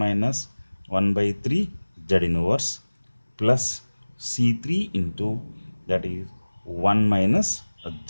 1 by 3 z inverse plus C3 into, that is 1 minus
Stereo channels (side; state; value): both; inverted; correlation -1.00